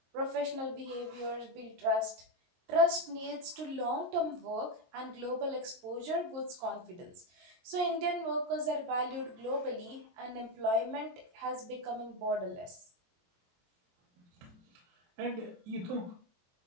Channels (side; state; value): left; late; 23 ms